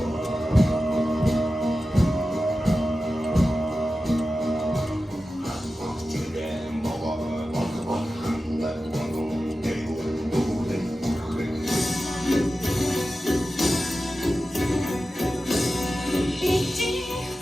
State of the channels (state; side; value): normal; both; correlation 0.93